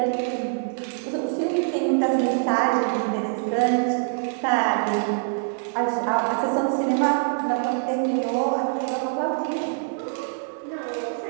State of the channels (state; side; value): silent; left; digital silence